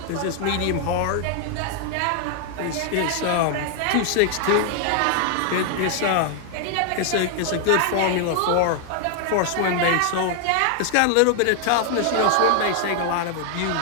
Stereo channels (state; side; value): different; both; correlation 0.00